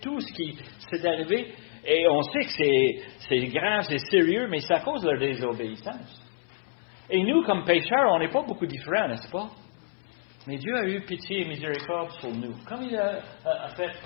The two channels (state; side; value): silent; right; 59 dB below the other